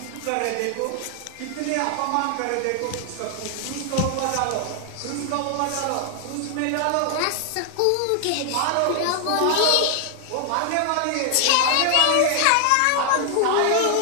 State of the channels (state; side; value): different; both; correlation 0.00